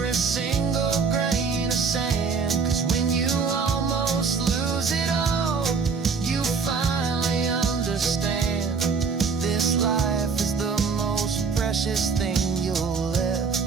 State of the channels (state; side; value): quieter; left; 5.2 dB